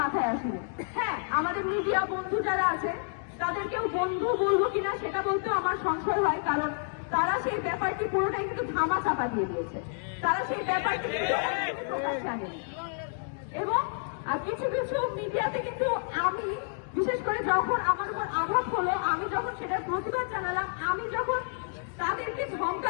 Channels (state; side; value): silent; right; 57 dB below the other